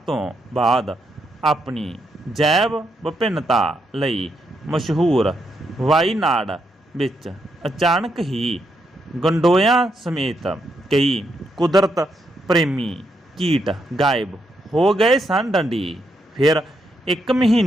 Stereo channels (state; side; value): normal; both; correlation 0.79